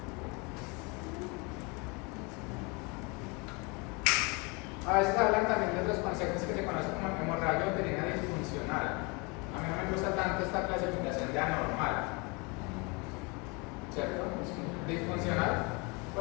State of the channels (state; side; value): quieter; right; 29.4 dB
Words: A veces hablan también de otros conceptos que se conocen como hemorragia uterina disfuncional. A mí no me gusta tanto esta clasificación de anormal. ¿Cierto? Disfuncional